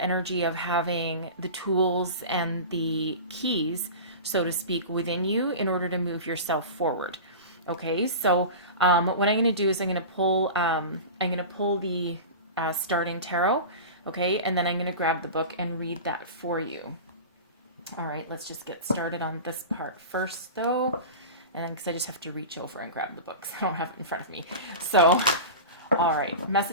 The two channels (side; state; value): both; inverted; correlation -0.31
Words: energy of having the tools and the keys, so to speak, within you in order to move yourself forward. Okay, so what I'm going to do is I'm going to pull the starting tarot. Okay, and then I'm going to grab the book and read that for you. All right, let's just get started on this part first, though. And then, because I just have to reach over and grab the book, so I don't have it in front of me. So, all right,